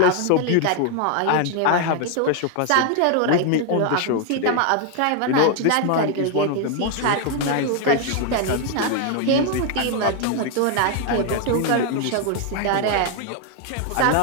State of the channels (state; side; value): different; both; correlation 0.00